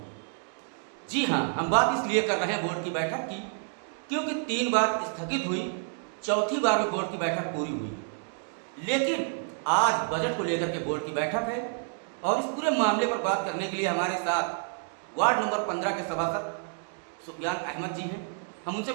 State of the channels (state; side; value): silent; left; 58 dB below the other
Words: जी हाँ, हम बात इसलिए कर रहे हैं बोर्ड की बैठक की क्योंकि 3 बार स्थगित हुई, चौथी बार में बोर्ड की बैठक पूरी हुई। लेकिन आज बजट को लेकर के बोर्ड की बैठक है और इस पूरे मामले पर बात करने के लिए हमारे साथ वार्ड नंबर 15 के सभासद सुफियान अहमद जी हैं। हम उनसे